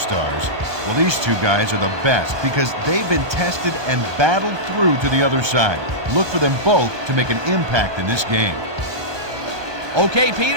Well, these two guys are the best because they've been tested and battled through to the other side. Look for them both to make an impact in this game. Okay,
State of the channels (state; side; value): late; left; 1.3 ms